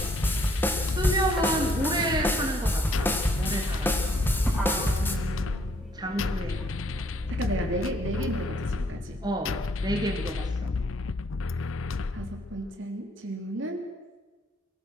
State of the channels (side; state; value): both; normal; correlation 0.66